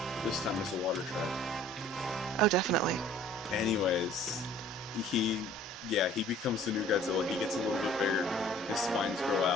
This time it's a water tribe. Oh, definitely. Anyways, he becomes the new Godzilla. He gets a little bit bigger. His spines grow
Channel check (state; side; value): normal; both; correlation 0.52